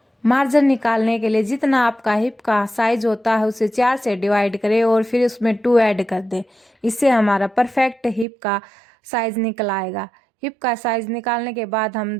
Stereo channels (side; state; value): left; drops out; at 8.2 s